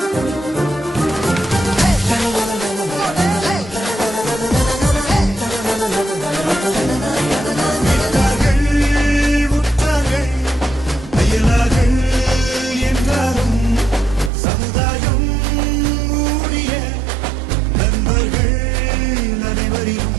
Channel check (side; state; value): left; drops out; at 14.3 s